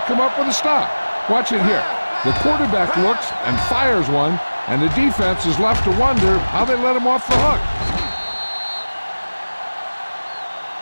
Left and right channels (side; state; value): both; inverted; correlation -1.00